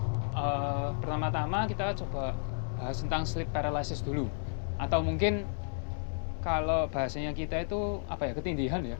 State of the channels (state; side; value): silent; right; digital silence